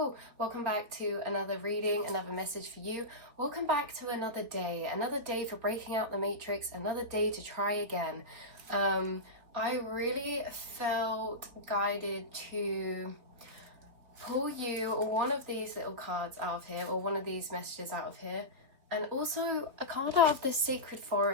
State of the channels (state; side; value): late; left; 3.8 ms